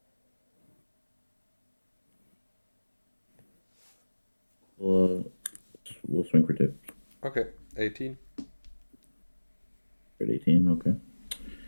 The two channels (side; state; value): both; inverted; correlation -1.00